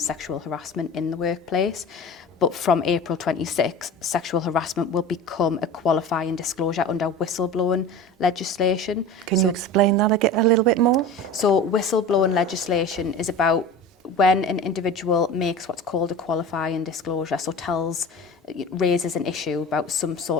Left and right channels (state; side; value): normal; both; correlation 0.34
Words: harassment in the workplace. But from April 26, sexual harassment will become a qualifying disclosure under whistleblowing legislation. Can you explain that a little bit more? So whistleblowing legislation is about when an individual makes what's called a qualifying disclosure, so raises an issue about some